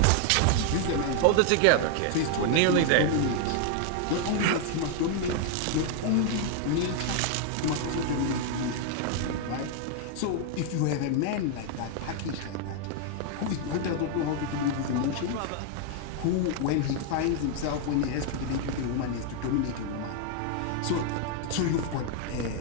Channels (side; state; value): both; different; correlation 0.00